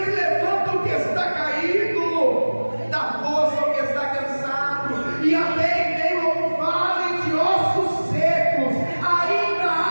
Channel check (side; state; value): both; inverted; correlation -1.00